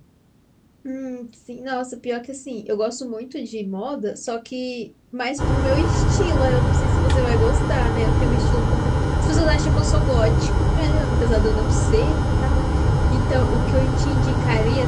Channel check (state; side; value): identical; both; correlation 1.00